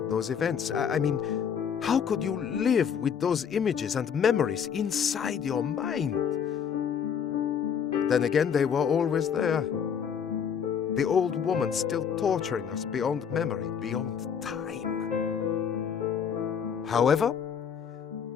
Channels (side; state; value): right; quieter; 7.5 dB